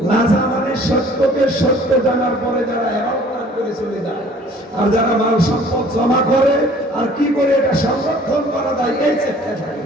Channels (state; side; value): normal; both; correlation 0.53